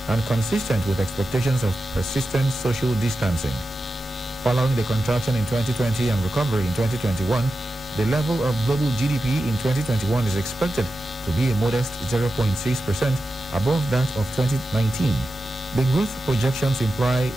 and consistent with expectations of persistent social distancing. Following the contraction in 2020 and recovery in 2021, the level of global GDP in 2021 is expected to be a modest 0.6% above that of 2019. The growth projections imply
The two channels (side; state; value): both; normal; correlation 0.91